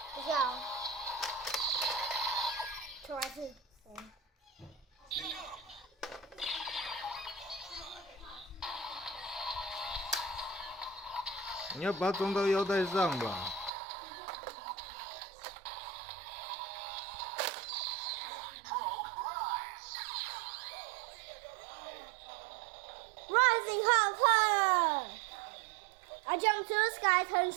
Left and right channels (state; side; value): drops out; left; at 13.7 s